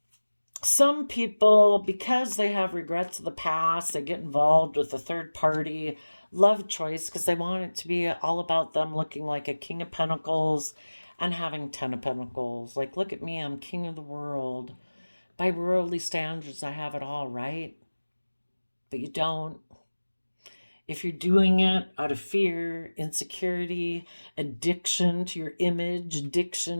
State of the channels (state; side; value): inverted; both; correlation -1.00